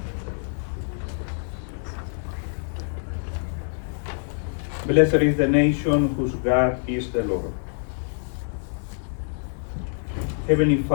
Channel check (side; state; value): right; silent; digital silence